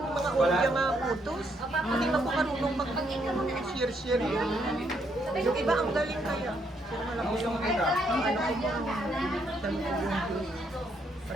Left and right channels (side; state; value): both; normal; correlation 0.74